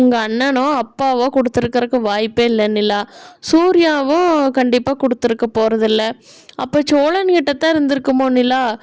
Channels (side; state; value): both; identical; correlation 1.00